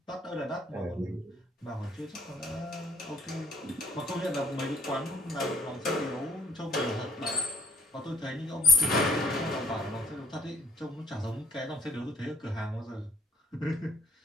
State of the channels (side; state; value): both; normal; correlation 0.62